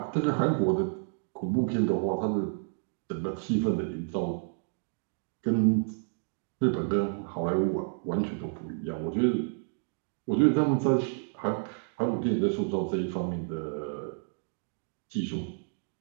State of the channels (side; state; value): left; silent; 58 dB below the other